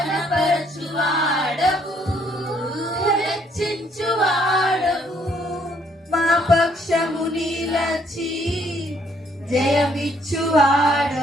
హెచ్చించువాడవు, మా పక్షము నిలచి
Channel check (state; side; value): normal; both; correlation 0.67